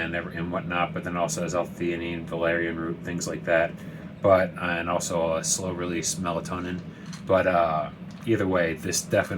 whatnot, but then also has L-theanine, valerian root, things like that. And also a slow release melatonin. But either way, this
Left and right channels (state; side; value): identical; both; correlation 1.00